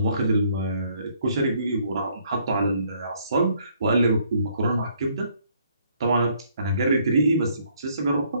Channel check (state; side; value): inverted; both; correlation -0.66